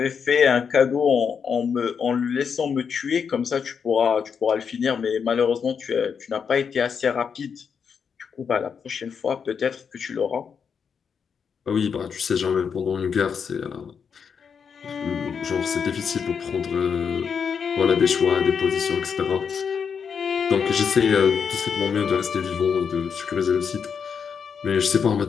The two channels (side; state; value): right; quieter; 6.6 dB